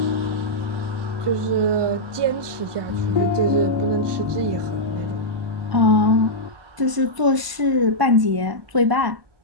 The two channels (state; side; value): late; left; 1.0 ms